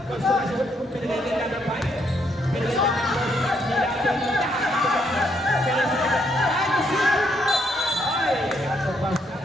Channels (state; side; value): normal; both; correlation 0.74